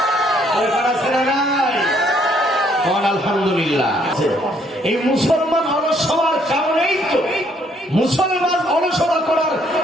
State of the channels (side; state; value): both; normal; correlation 0.67